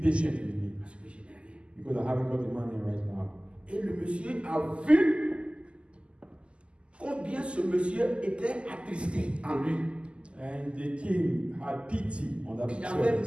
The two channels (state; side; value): late; left; 0.053 ms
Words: patient with me. Parce que je n'ai rien. Because I haven't got the money right now. Et le monsieur a vu combien ce monsieur était attristé en lui. And the king had pity on that Il avait